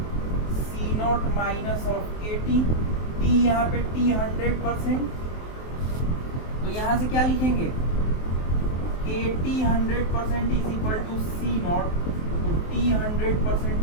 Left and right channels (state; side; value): late; right; 23 ms